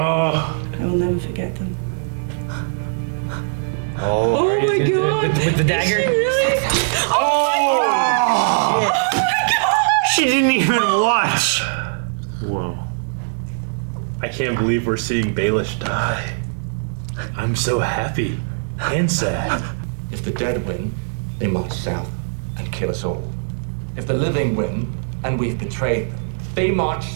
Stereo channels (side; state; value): left; silent; digital silence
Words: I will never forget them. Oh my God. With the dagger? She didn't even watch. Whoa. I can't believe we're seeing Baelish die. I'm so happy and sad. If the dead win, they march south and kill us all. If the living win, and we've betrayed them, they march